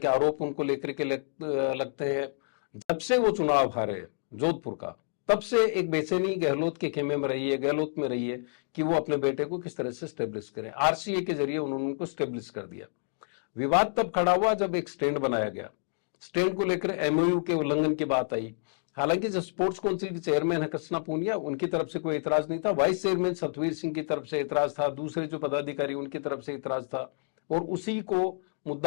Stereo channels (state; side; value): silent; right; digital silence